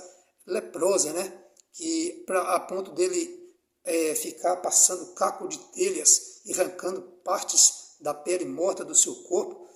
leprosa, né? Que a ponto dele ficar passando caco de telhas e arrancando partes da pele morta do seu corpo.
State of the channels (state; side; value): identical; both; correlation 1.00